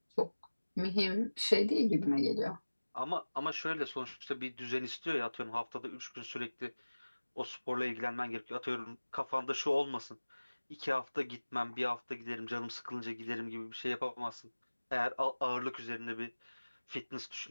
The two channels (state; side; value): inverted; both; correlation -1.00